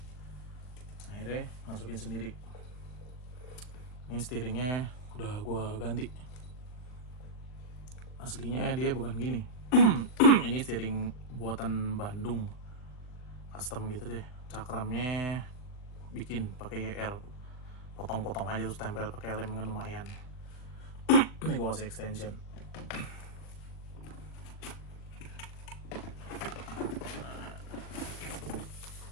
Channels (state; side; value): late; right; 39 ms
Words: Akhirnya masukin sendiri. Ini steeringnya udah gue ganti. Aslinya dia bukan gini. Ini steering buatan Bandung, custom gitu deh. Cakramnya bikin pakai YR, potong-potong aja terus tempel pakai lem kan lumayan. Ini gue kasih extension.